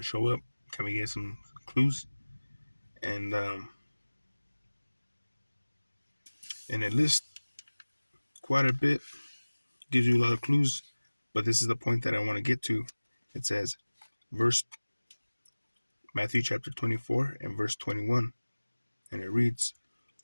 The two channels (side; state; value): both; inverted; correlation -1.00